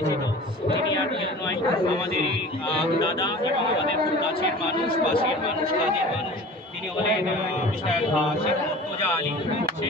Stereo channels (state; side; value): normal; both; correlation 0.40